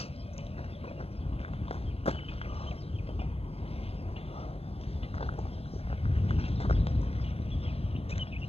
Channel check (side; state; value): right; late; 0.29 ms